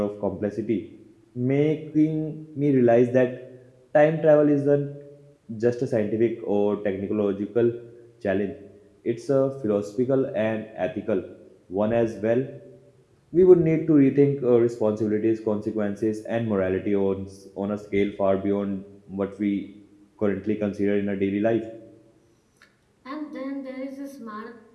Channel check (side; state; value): both; identical; correlation 1.00